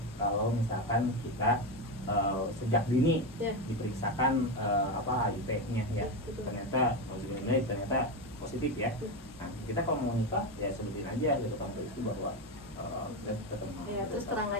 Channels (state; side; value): normal; both; correlation 0.13